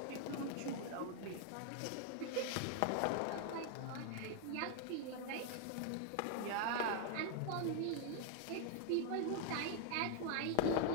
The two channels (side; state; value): both; different; correlation 0.00